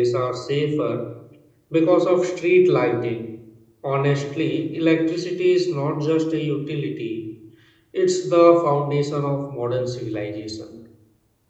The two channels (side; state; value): both; identical; correlation 1.00